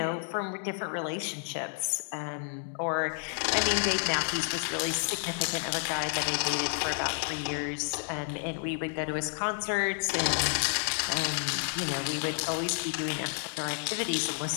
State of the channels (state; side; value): silent; right; 57 dB below the other